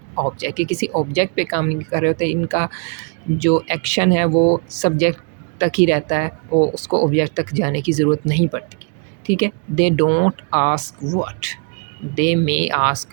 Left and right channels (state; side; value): quieter; left; 37.9 dB